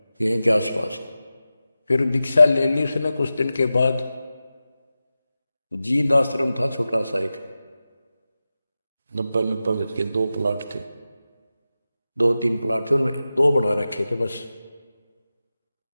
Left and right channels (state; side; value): inverted; both; correlation -0.94